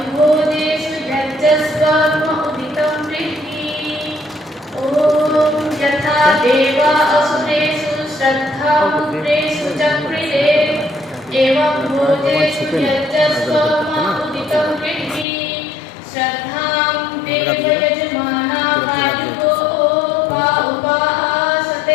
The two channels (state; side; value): drops out; right; at 15.2 s